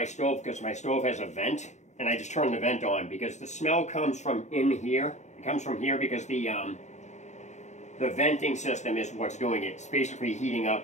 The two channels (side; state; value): right; late; 0.34 ms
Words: stove, because my stove has a vent, and I just turn the vent on because the smell comes from in here. It comes from here because the venting system is what's doing it. It's basically heating